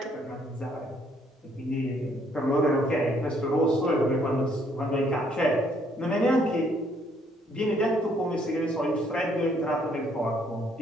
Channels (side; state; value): both; normal; correlation 0.67